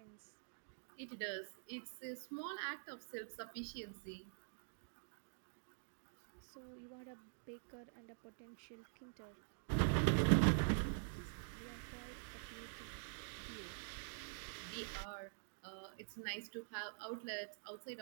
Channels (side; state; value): left; silent; digital silence